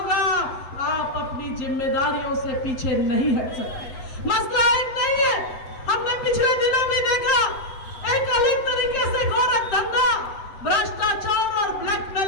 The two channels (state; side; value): late; right; 8.1 ms